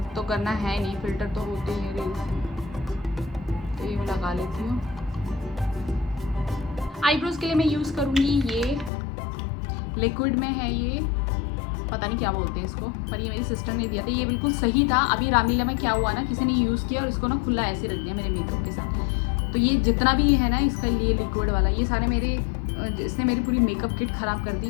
तो करना है नहीं, फिल्टर तो होते हैं रील्स, तो ये मैं लगा लेती हूँ। आईब्रोज़ के लिए मैं यूज़ करूँगी ये लिक्विड में है, ये पता नहीं क्या बोलते हैं इसको, पर ये मेरी सिस्टर ने दिया था, ये बिल्कुल सही था। अभी रामलीला में क्या हुआ ना, किसी ने यूज़ किया और इसको ना खुला ऐसे रख दिया मेरे मेकअप के साथ। तो ये जितना भी है ना इसका, ये लिक्विड वाला, ये सारे मेरे, इसने मेरी पूरी मेकअप किट ख़राब कर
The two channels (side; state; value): right; drops out; at 8.9 s